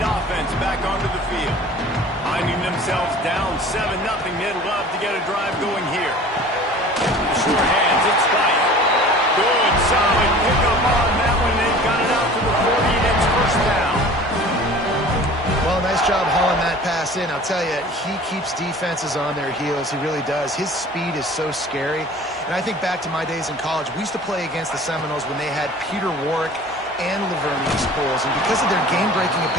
back onto the field. Finding themselves down 7-0, they'd love to get a drive going here. Sure hands, it's White. Good, solid pickup on that one. They've got it out to the 40, and it's first down. Well, nice job hauling that pass in. I'll tell you, he keeps defenses on their heels. He really does. His speed is so scary. And I think back to my days in college. We used to play against the Seminoles when they had Peter Warrick and Laverne Pools, and because of their game-breaking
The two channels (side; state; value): both; normal; correlation 0.44